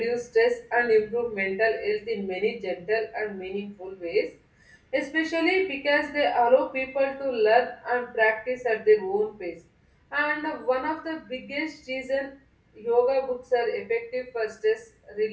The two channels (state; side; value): identical; both; correlation 1.00